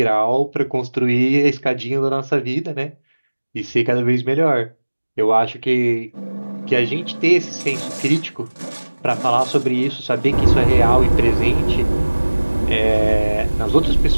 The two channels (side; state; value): both; inverted; correlation -1.00